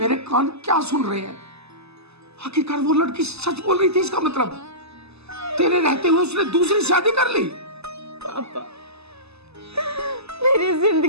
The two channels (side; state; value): left; late; 0.79 ms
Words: कान क्या सुन रहे हैं? आखिरकार वो लड़की सच बोल रही थी, इसका मतलब तेरे रहते हुए उसने दूसरी शादी कर ली? पापा, मेरी